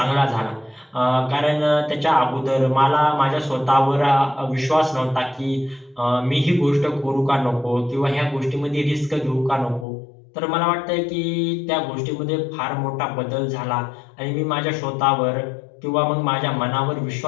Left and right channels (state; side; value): drops out; right; at 9.9 s